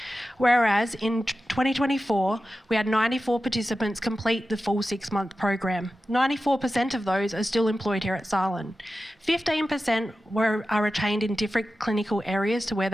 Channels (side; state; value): both; normal; correlation 0.93